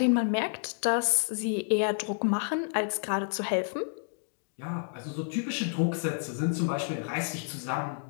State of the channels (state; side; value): silent; right; digital silence